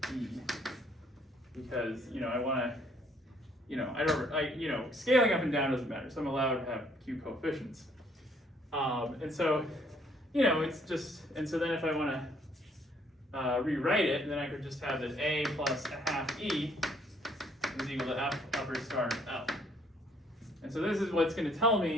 E, because, you know, I want to, you know, you know, scaling up and down doesn't matter, so I'm allowed to have Q coefficients. And so, you know, it's just, and so then if I want to rewrite it, then I could just have that A plus a half E is equal to F upper star L. And so this is what's going to tell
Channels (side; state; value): both; normal; correlation 0.65